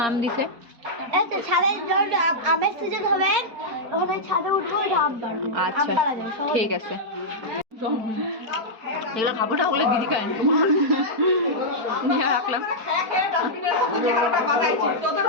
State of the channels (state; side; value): late; left; 4.4 ms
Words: মাম দিছে আমের সিজন হবে ওখানে ছাদে উঠবো আচ্ছা ঠিক আছে এগুলো খাবো না ওগুলো দিদি খায় নিয়ে রাখলাম